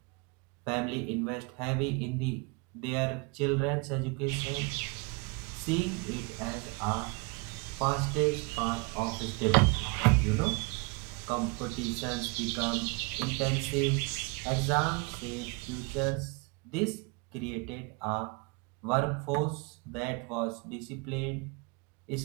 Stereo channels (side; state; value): left; quieter; 29.4 dB